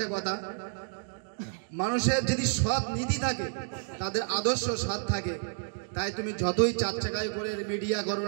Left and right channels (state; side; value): silent; left; 58 dB below the other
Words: কথা। মানুষের যদি সৎ নীতি থাকে, তাদের আদর্শ সৎ থাকে, তাই তুমি যতই চার চাকায় করে মিডিয়া করো